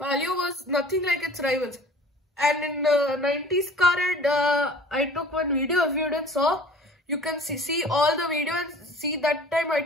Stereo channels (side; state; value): both; normal; correlation 0.47